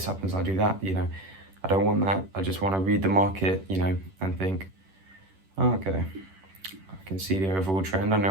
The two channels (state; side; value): late; left; 10 ms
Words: happens, I do that. You know, I don't want that. I just want to read the market, you know, and think, oh, okay, I can see the overall trend. I